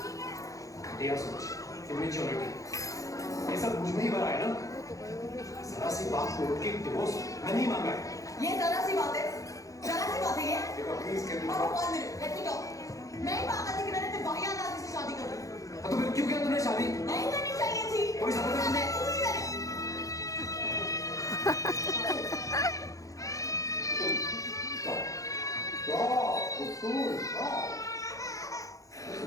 घटिया सोच, इमेच्योरिटी, ये सब मुझ में ही भरा है ना। जरा सी बात को उठ के डिवोर्स मैं नहीं मांगा है। ये जरा सी बात है ये। प्लीज कैन और one minute, let me talk. मैं ही पागल थी कि मैंने तेरे वाहियात आदमी से शादी कर ली। तो फिर क्यों किया तूने शादी? नहीं करनी चाहिए थी। कोई समझ नहीं।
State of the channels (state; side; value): late; right; 0.16 ms